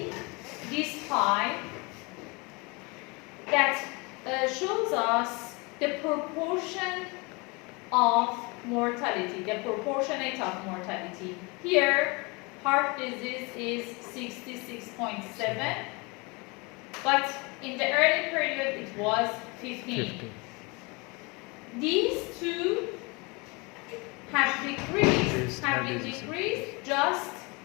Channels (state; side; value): quieter; right; 27.9 dB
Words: this pie that shows us the proportion of mortality, the proportionate of mortality. Here, heart disease is 66.7, but in the early period it was 15. 50. These two have been decreased just